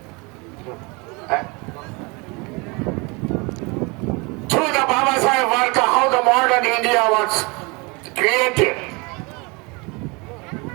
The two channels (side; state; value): left; quieter; 28.0 dB